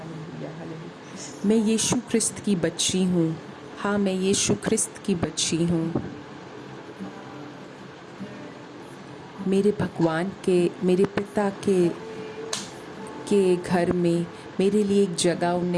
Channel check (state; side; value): identical; both; correlation 1.00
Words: hallelujah. मैं यीशु ख्रिस्त की बच्ची हूँ। हाँ, मैं यीशु ख्रिस्त की बच्ची हूँ। मेरे भगवान के, मेरे पिता के घर में मेरे लिए एक जगह